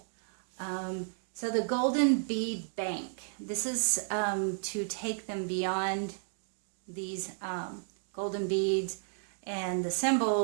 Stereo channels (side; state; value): left; silent; digital silence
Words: So the golden bead bank, this is to take them beyond these golden beads and the